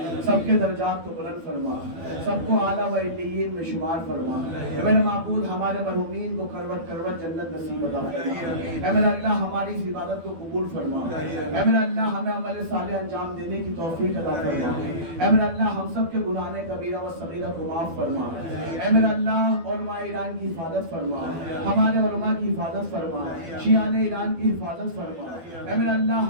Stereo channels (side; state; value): left; late; 12 ms